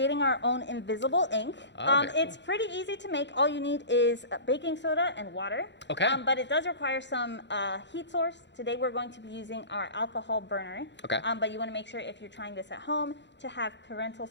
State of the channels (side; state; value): right; late; 0.52 ms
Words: our own invisible ink. Okay. It's pretty easy to make. All you need is baking soda and water. Okay. But it does require some heat source. Today we're going to be using our alcohol burner. Okay. But you want to make sure if you're trying this at home to have parental